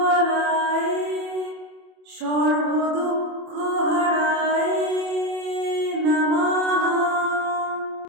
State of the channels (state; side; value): late; left; 27 ms